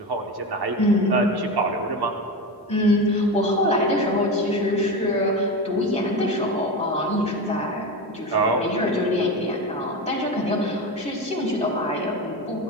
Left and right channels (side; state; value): both; normal; correlation 0.21